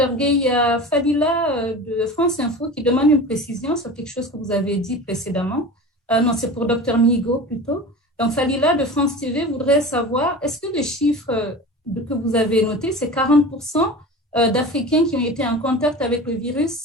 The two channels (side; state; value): both; normal; correlation 0.34